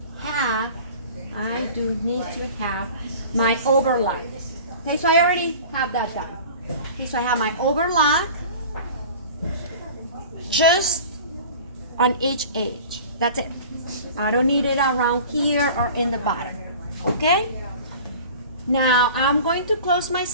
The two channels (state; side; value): inverted; both; correlation -0.41